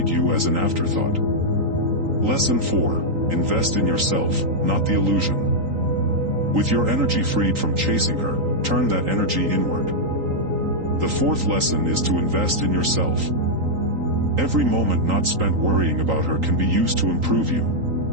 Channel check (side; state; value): left; late; 3.8 ms